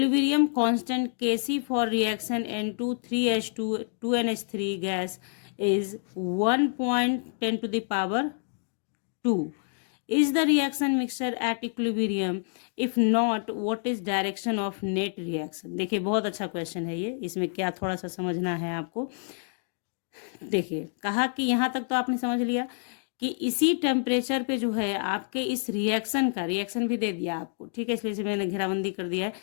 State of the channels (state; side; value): silent; right; 59 dB below the other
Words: constant Kc for reaction N2 3H2 2NH3 gas is 1.10 to the power 2. Is the reaction mixture at equilibrium? If not, what is direction of net reaction? देखिए बहुत अच्छा question है ये, इसमें क्या थोड़ा सा समझना है आपको। देखिए कहा कि यहाँ तक तो आपने समझ लिया कि इसी टेम्परेचर पे जो है आपके इस रिएक्शन का, रिएक्शन भी दे दिया आपको, ठीक है, इसलिए मैंने घेराबंदी कर दिया है,